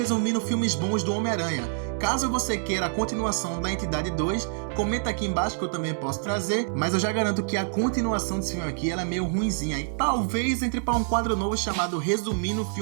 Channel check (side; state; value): left; silent; digital silence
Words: filmes bons do Homem-Aranha. Caso você queira a continuação da Entidade 2, comenta aqui embaixo que eu também posso trazer, mas eu já garanto que a continuação desse filme aqui ela é meio ruinzinha e talvez entre para um quadro novo chamado Resumindo